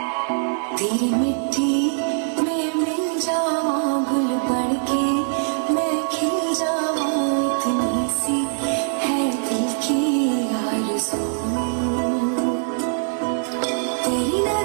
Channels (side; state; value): left; silent; digital silence